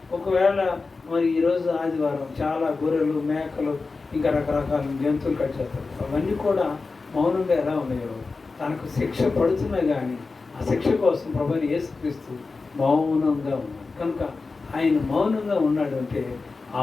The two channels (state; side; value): quieter; right; 4.1 dB